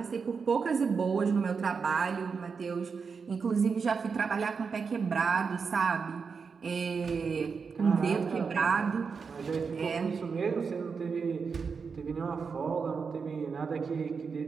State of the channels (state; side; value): quieter; left; 5.5 dB